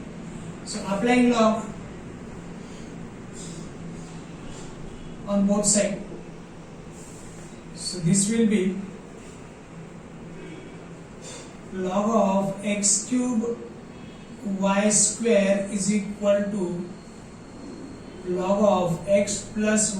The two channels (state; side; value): identical; both; correlation 1.00